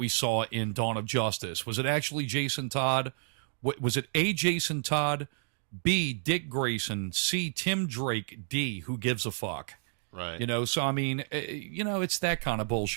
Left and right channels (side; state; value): left; silent; digital silence